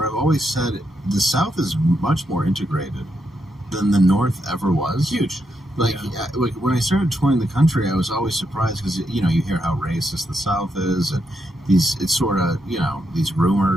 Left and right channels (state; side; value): normal; both; correlation 0.81